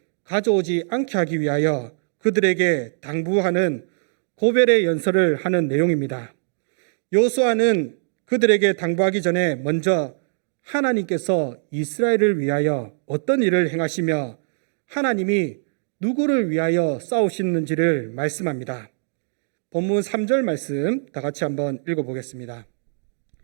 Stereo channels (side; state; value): left; silent; digital silence